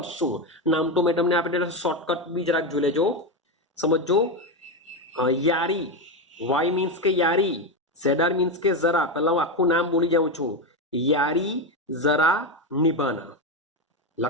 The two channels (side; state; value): both; normal; correlation 0.11